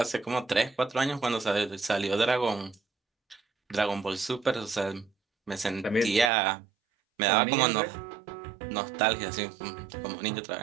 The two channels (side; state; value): left; drops out; at 6.3 s